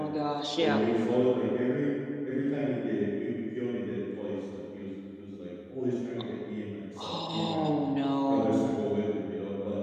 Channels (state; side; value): identical; both; correlation 1.00